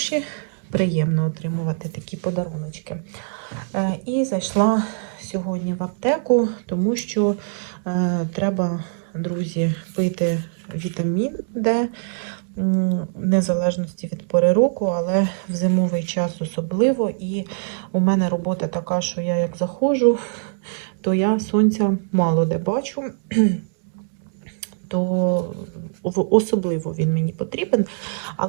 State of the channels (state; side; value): silent; left; 64 dB below the other